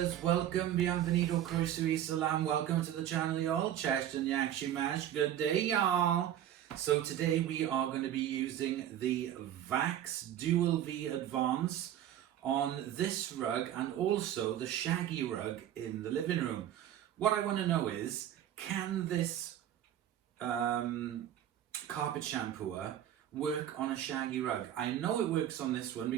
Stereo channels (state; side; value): quieter; left; 11.2 dB